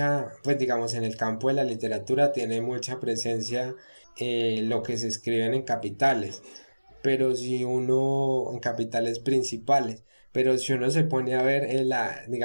pues digamos en el campo de la literatura tiene mucha presencia lo que se escriben en capitales, pero si uno, en capitales principales, pero si uno se pone a ver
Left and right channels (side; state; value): both; inverted; correlation -1.00